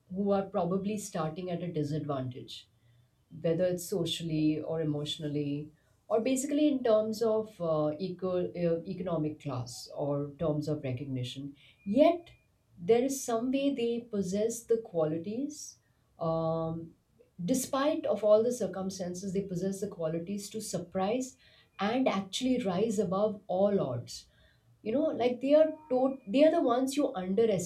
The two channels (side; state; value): both; identical; correlation 1.00